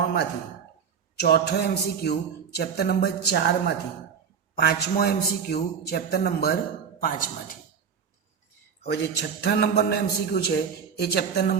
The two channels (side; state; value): left; quieter; 6.8 dB